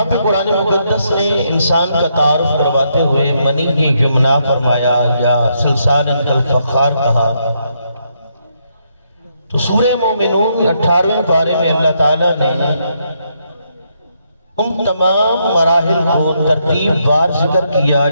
پہ قرآن مقدس نے انسان کا تعارف کرواتے ہوئے منی یمنا فرمایا یا سلسال کالفخار کہا، تو سورہ مومنون 18ویں پارے میں اللہ تعالیٰ نے ان تمام مراحل کو ترتیب وار ذکر کیا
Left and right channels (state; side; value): inverted; both; correlation -0.76